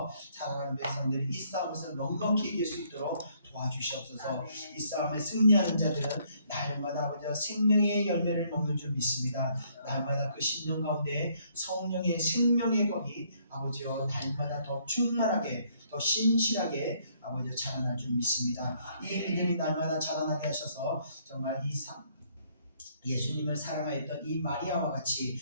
사랑하는 백성들이 이 싸움에서 넉넉히 이길 수 있도록 도와주시옵소서. 이 싸움에 승리하는 자들은 날마다 아버지와 생명의 열매를 먹는 줄 믿습니다. 날마다 그 심령 가운데 성령의 생명의 법이 아버지와 날마다 더 충만하게 더 신실하게 아버지와 자라날 줄 믿습니다. 이 믿음이 날마다 자라나게 하셔서 정말 이 예수님을 사랑하였던 이 마리아와 같이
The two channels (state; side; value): inverted; both; correlation -0.67